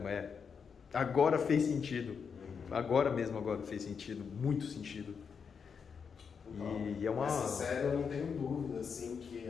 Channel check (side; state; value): right; quieter; 6.3 dB